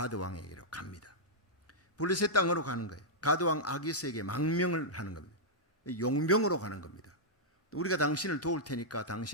왕에게로 갑니다. 블레셋 땅으로 가는 거예요. 가드 왕 아기스에게 망명을 하는 겁니다. 용병으로 가는 겁니다. 우리가 당신을 도울 테니까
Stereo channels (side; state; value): both; normal; correlation -0.08